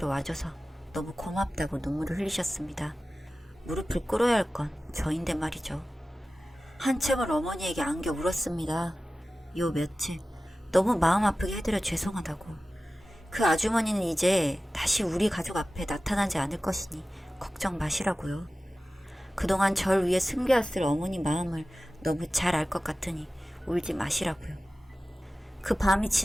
와줘서 너무 고맙다고 눈물을 흘리셨습니다. 무릎을 꿇어야 할 건 저인데 말이죠. 한참을 어머니에게 안겨 울었습니다. 요 며칠 너무 마음 아프게 해드려 죄송하다고. 그 아주머니는 이제 다시 우리 가족 앞에 나타나지 않을 것이니 걱정 마시라고요. 그동안 절 위해 숨겨왔을 어머니 마음을 너무 잘 알 것 같으니 울지 마시라고요. 그 밤이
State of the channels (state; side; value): normal; both; correlation 0.96